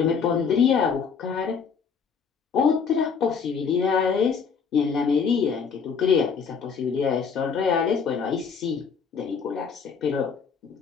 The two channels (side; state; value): right; quieter; 6.1 dB